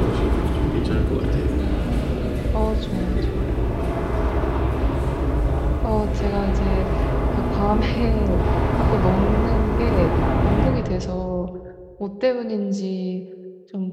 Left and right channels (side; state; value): both; identical; correlation 1.00